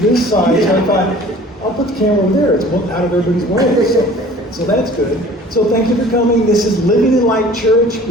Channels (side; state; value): both; normal; correlation 0.47